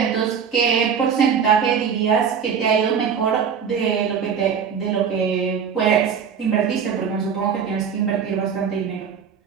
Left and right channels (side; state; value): left; quieter; 7.0 dB